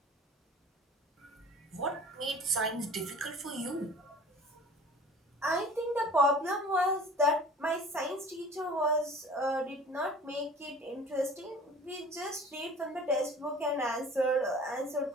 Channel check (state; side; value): normal; both; correlation 0.45